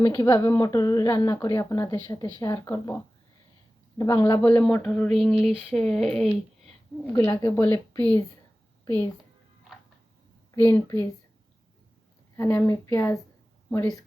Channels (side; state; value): both; normal; correlation 0.96